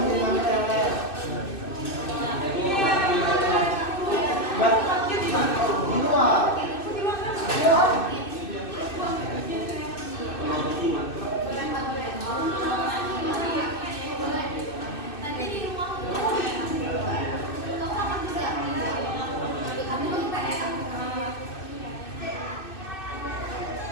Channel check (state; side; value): late; right; 2.6 ms